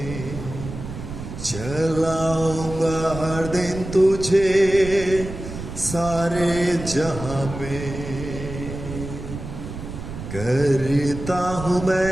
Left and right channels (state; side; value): noise; right; rumble, 9 dB below the sound